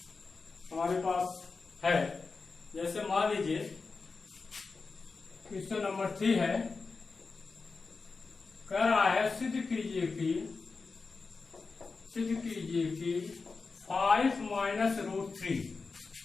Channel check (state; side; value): quieter; right; 4.4 dB